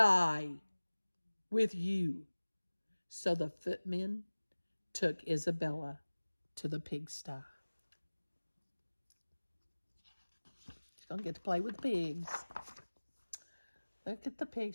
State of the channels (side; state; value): both; inverted; correlation -1.00